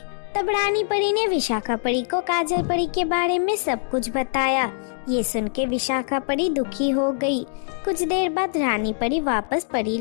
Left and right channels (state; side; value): silent; right; digital silence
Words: तब रानी परी ने विशाखा परी को काजल परी के बारे में सब कुछ बताया। ये सुन के विशाखा परी दुखी हो गई। कुछ देर बाद रानी परी वापस परी